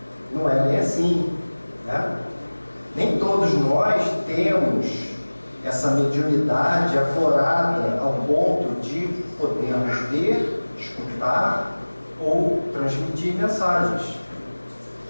Não é bem assim, né? Nem todos nós temos essa mediunidade aflorada ao ponto de podermos ver, escutar ou transmitir mensagens.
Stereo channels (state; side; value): inverted; both; correlation -1.00